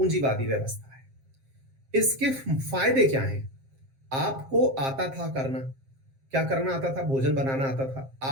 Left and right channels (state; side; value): late; left; 7.5 ms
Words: व्यवस्था है। इसके फायदे क्या हैं? आपको आता था करना, क्या करना आता था? भोजन बनाना आता था,